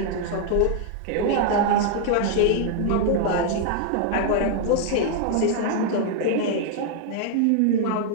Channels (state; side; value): different; both; correlation 0.00